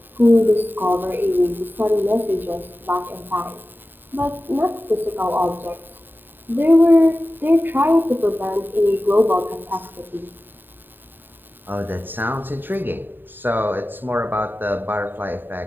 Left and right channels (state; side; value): late; left; 0.094 ms